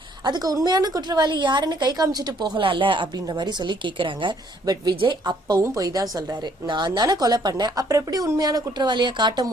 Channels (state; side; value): normal; both; correlation 0.64